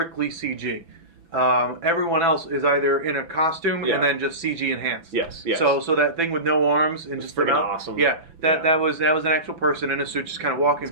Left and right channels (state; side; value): late; left; 6.0 ms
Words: CG. Everyone else is either in a costume and then just CG enhanced. Yes. So that thing with no arms and just freaking awesome. Yeah, that was an actual person in a suit just kind of walking. It's